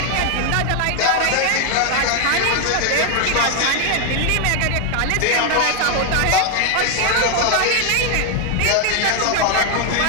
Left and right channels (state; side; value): different; both; correlation 0.00